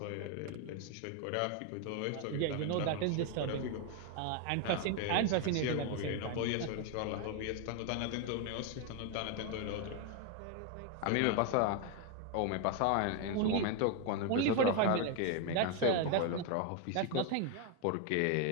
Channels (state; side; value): different; both; correlation 0.01